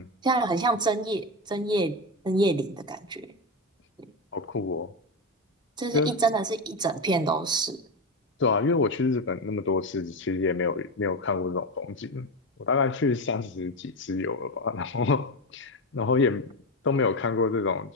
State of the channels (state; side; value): normal; both; correlation 0.15